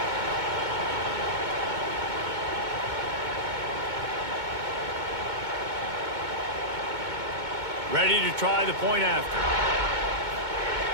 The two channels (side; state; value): left; late; 2.2 ms